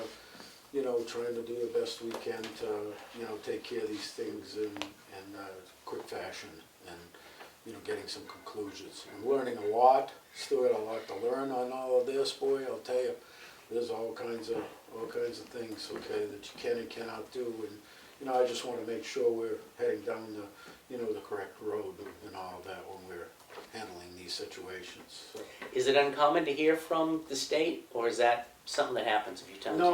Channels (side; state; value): both; identical; correlation 1.00